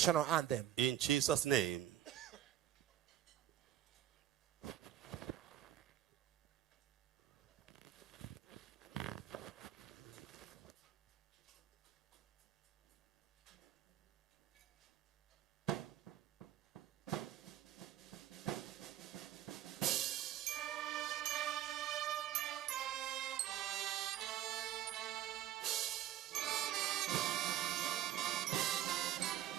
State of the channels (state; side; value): quieter; left; 11.9 dB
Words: anthem. In Jesus' name.